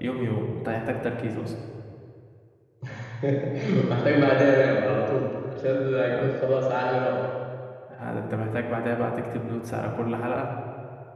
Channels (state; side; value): identical; both; correlation 1.00